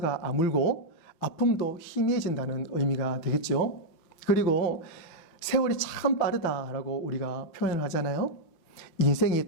아물고 아픔도 희미해진다는 의미가 되겠죠. 그리고 세월이 참 빠르다라고 우리가 표현을 하잖아요. 인생이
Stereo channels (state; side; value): late; right; 6.0 ms